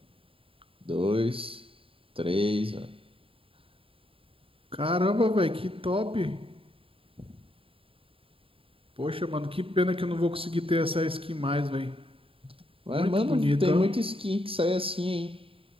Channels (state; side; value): late; left; 0.27 ms